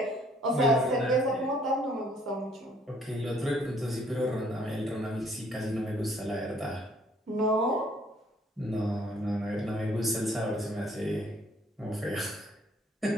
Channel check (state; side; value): normal; both; correlation 0.62